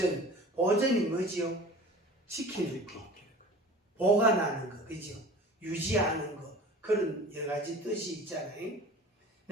보존이 뭐지요? 지키는 거, 보관하는 거, 그죠? 유지하는 거, 그런 여러 가지 뜻이 있잖아요.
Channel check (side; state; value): both; normal; correlation 0.41